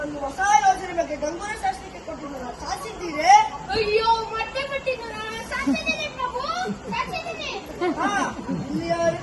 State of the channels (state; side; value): identical; both; correlation 1.00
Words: ಹೊಸ ಯೋಜನೆ ಬಗ್ಗೆ ಗಂಗೂರ ಶಾಸ್ತ್ರಕ್ಕೆ ಕೊಟ್ಟಿರುವ ಸಾಧಿಸಿದ್ದೀರೇ? ಅಯ್ಯೋ, ಮತ್ತೆ ಸಾಧಿಸಿದ್ದೀನಿ ಪ್ರಭು, ಸಾಧಿಸಿದ್ದೀನಿ.